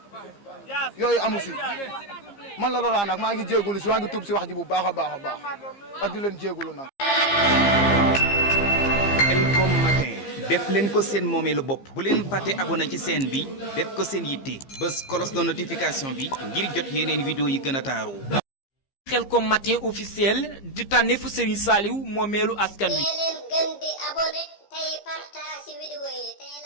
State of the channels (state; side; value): late; right; 15 ms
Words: yi yooyu amu si man la Laurent nag maa ngi jéegulu si maa ngi tuub si wax ji bu baax a baax a baax ak di leen jéegulu nag. Khelcom matin def leen ko seen moomeelu bopp bu leen fàtte abonné ci chaîne bi def ko seen yitte bës cloche de notification bi ngir jot yeneen vidéo yi gën a taaru. Khelcom matin officiel di tànneefu Serigne Saliou moomeelu askan wi. leen gën di abonné tey partage vidéo yi tey